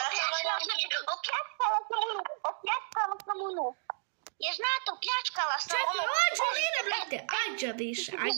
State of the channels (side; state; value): left; silent; digital silence